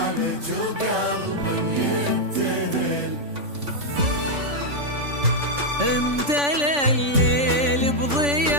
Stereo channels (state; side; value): late; left; 3.5 ms